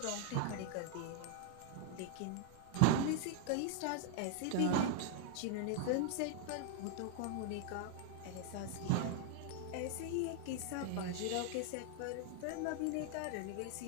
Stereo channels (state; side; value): different; both; correlation 0.00